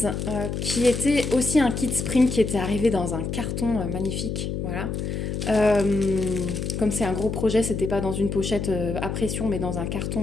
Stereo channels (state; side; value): noise; left; hum, 3 dB below the sound